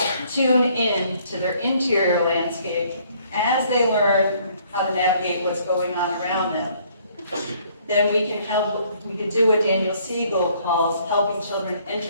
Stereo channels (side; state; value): both; inverted; correlation -0.63